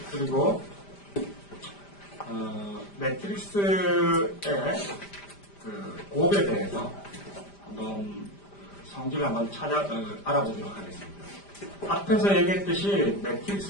그리고 매트릭스의 그 곱에 대해서 한번 성질을 한번 알아보도록 하겠습니다. 앞에서 얘기했듯이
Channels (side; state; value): right; late; 5.0 ms